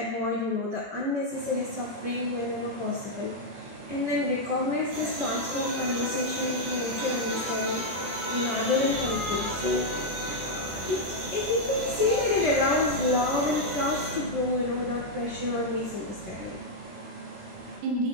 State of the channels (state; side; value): late; left; 21 ms